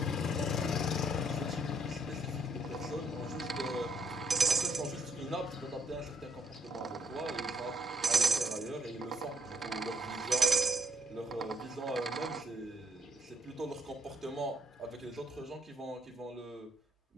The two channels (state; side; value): normal; both; correlation 0.69